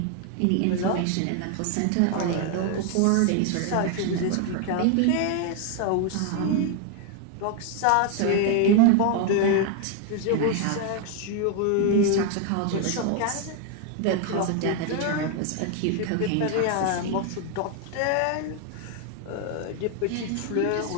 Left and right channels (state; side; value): different; both; correlation 0.00